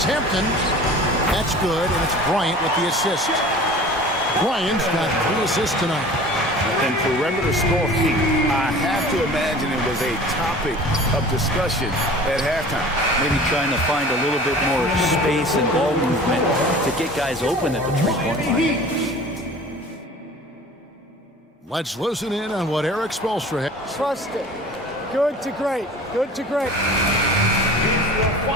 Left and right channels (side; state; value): both; normal; correlation 0.42